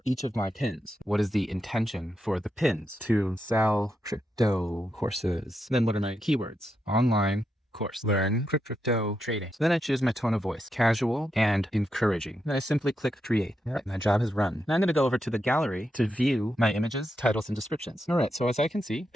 each of my pins. What is the intention for the pins? To sell crypto courses. Then what are my keywords? Online course, learn crypto trading. So then I choose my tone of voice, casual and encouraging. Then I simply click create. All right, my job is run. Now I'm going to go over to the gallery to view my images, titles, and descriptions. All right, so as I can see,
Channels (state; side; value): normal; both; correlation 0.84